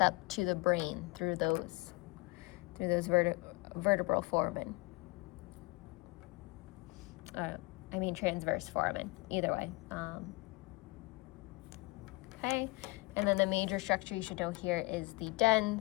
to the brain through those vertebral foramen. I mean transverse foramen, either way. Okay, and then the major structure you should know here is the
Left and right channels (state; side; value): quieter; right; 24.5 dB